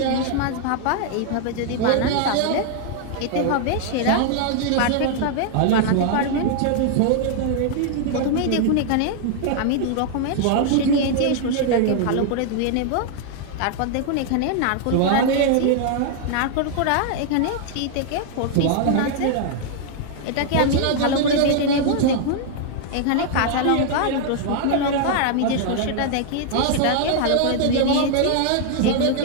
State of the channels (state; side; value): different; both; correlation 0.00